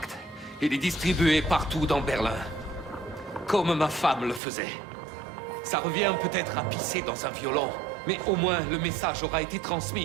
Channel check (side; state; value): left; drops out; at 4.4 s